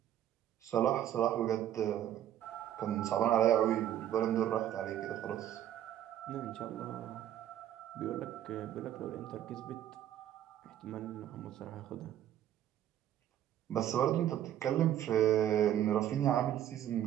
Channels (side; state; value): left; quieter; 11.4 dB